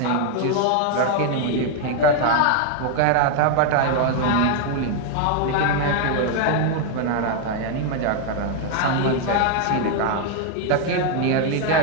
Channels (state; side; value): different; both; correlation 0.00